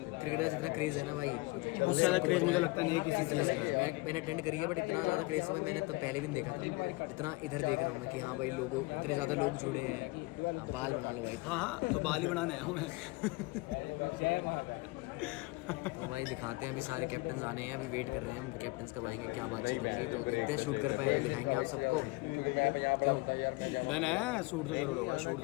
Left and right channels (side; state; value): right; quieter; 23.9 dB